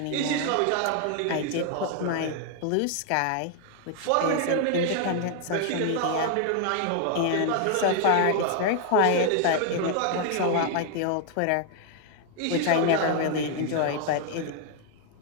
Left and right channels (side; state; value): both; different; correlation 0.00